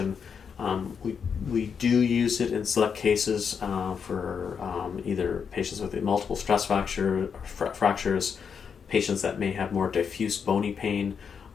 We do use it in select cases for either patients with multiple stress fractures, patients that may have more diffuse bony pain,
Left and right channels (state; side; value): quieter; right; 6.6 dB